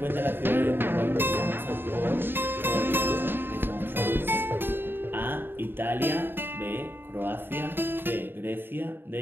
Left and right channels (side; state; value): left; late; 0.10 ms